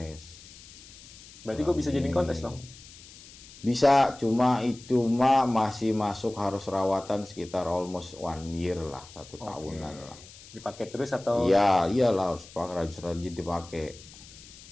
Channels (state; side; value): noise; left; hiss, 19 dB below the sound